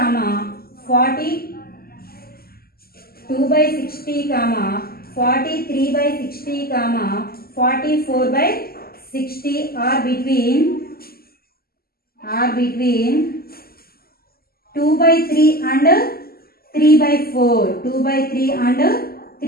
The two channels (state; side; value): late; right; 0.44 ms